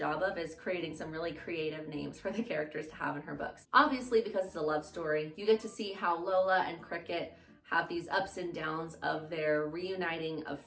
of, is creating some really creative names for the characters to have in her books. Obviously, because it's a love story, you get to see how Lola and Cricket have these ups and downs of their reuniting of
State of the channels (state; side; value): identical; both; correlation 1.00